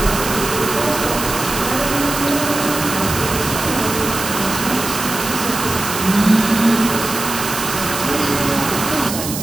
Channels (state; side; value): noise; right; hiss, 6 dB below the sound